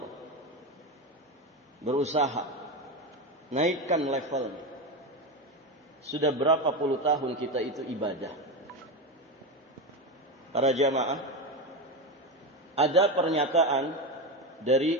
berusaha naikkan levelnya. Sudah berapa puluh tahun kita itu ibadah. Para jamaah, ada pernyataan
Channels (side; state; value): both; normal; correlation 0.16